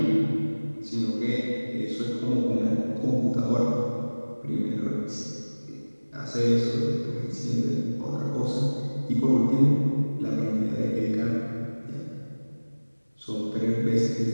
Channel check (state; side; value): inverted; both; correlation -1.00